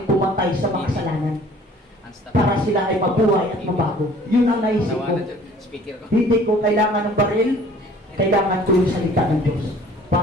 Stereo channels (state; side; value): normal; both; correlation 0.52